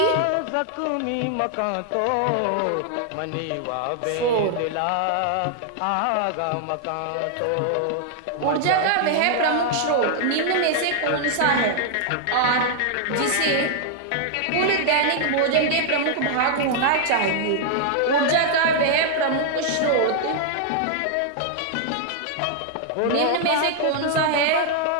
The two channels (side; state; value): both; different; correlation -0.01